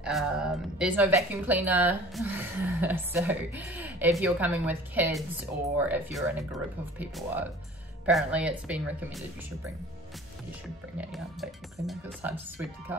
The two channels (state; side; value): normal; both; correlation 0.46